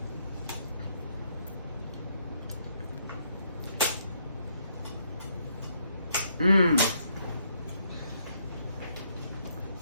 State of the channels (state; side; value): inverted; both; correlation -0.72